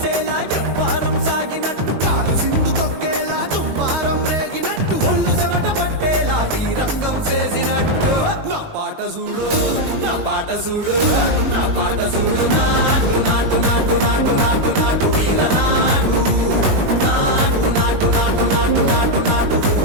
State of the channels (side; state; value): left; late; 20 ms